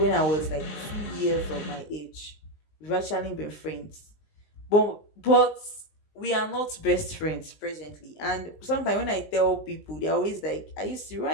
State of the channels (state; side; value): late; right; 19 ms